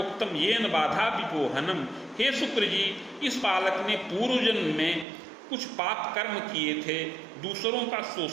येन बाधा विपोहनम, हे शुक्र जी, इस बालक ने पूर्व जन्म में कुछ पाप कर्म किए थे, दूसरों का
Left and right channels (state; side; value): drops out; left; at 5.1 s